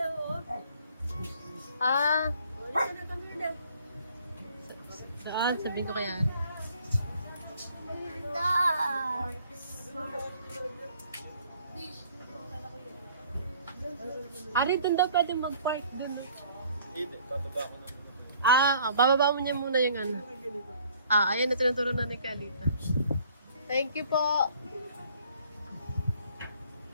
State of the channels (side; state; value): both; inverted; correlation -0.57